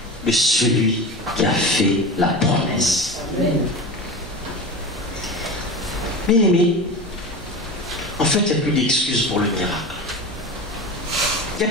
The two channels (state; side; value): normal; both; correlation 0.28